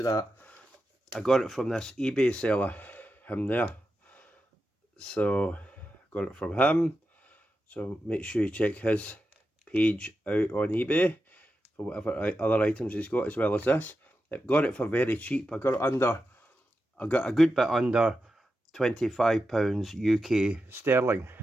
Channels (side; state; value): both; normal; correlation 0.89